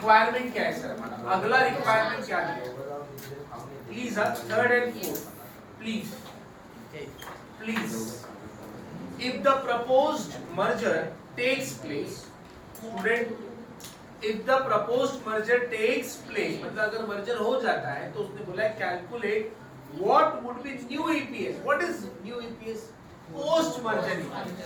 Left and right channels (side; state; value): both; identical; correlation 1.00